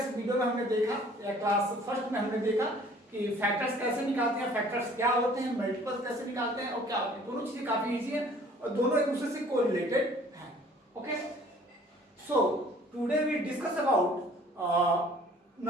video में हमने देखा या क्लास फर्स्ट में हमने देखा कि फैक्टर्स कैसे निकालते हैं, फैक्टर्स क्या होते हैं, मल्टीपल्स कैसे निकालते हैं और क्या होते हैं। दोनों चीजें काफी इजी हैं और दोनों एक दूसरे से कोरिलेटेड हैं। Okay, so today we discuss about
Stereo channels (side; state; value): both; normal; correlation 0.54